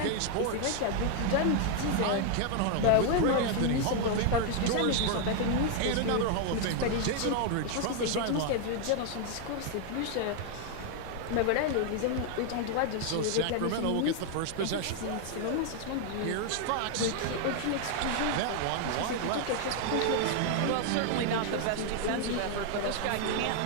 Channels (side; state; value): both; different; correlation 0.00